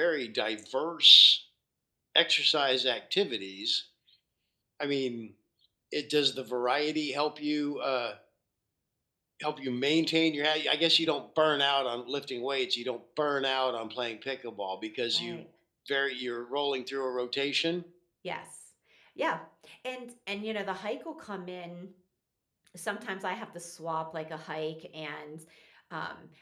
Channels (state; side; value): identical; both; correlation 1.00